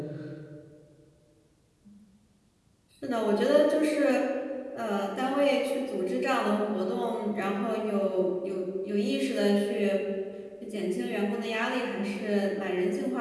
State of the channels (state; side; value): identical; both; correlation 1.00